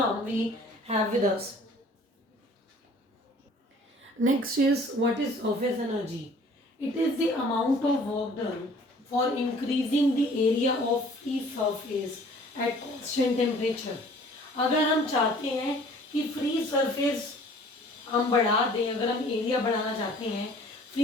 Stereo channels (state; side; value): normal; both; correlation 0.52